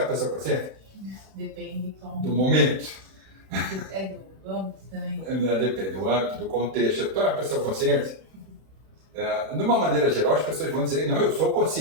uma pessoa consciente? Depende como. Do momento. Do âmbito também. Depende do âmbito, do contexto. Tu é uma pessoa consciente? De uma maneira geral, as pessoas vão dizer, não, eu sou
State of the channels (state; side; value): late; left; 31 ms